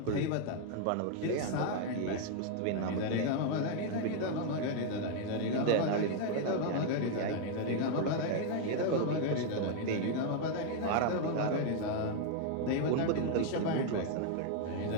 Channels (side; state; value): both; different; correlation 0.00